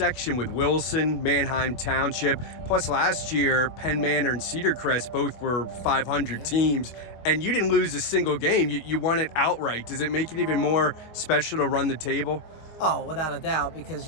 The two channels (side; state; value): right; late; 25 ms